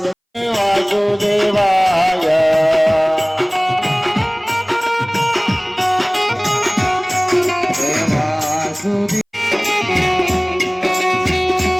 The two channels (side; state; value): both; identical; correlation 1.00